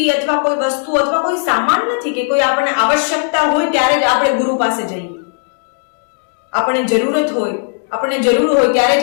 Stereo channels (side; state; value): right; silent; digital silence